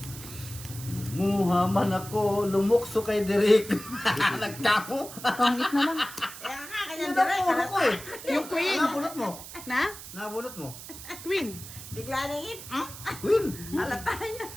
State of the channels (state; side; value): noise; right; hiss, 13 dB below the sound